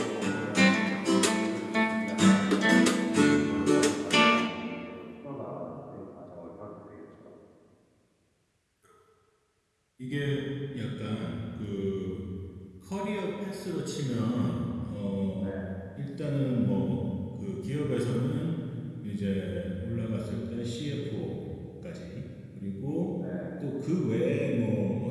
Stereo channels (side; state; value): both; identical; correlation 1.00